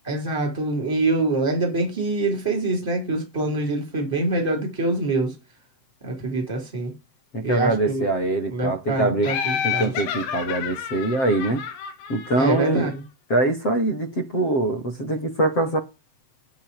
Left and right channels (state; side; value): late; right; 7.6 ms